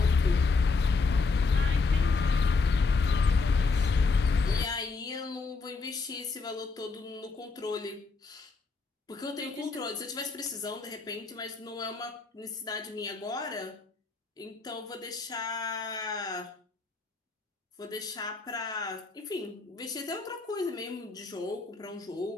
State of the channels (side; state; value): right; quieter; 4.2 dB